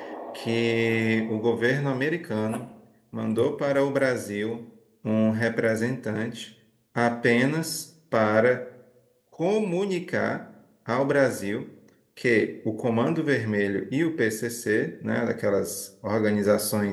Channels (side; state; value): both; identical; correlation 1.00